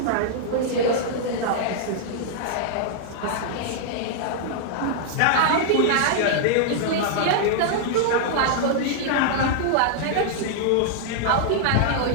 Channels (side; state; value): both; different; correlation -0.01